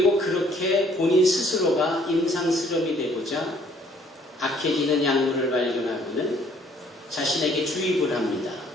그렇게 본인 스스로가 임상실험이 되고자 악해지는 약물을 발견하고는 자신에게 주입을 합니다.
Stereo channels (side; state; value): both; normal; correlation 0.61